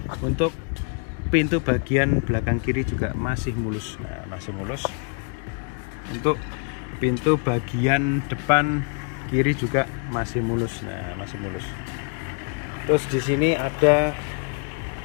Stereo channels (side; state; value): right; quieter; 37.3 dB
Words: Untuk pintu bagian belakang kiri juga masih mulus. Nah masih mulus. Untuk pintu bagian depan kiri juga masih mulus. Nah masih mulus. Terus di sini ada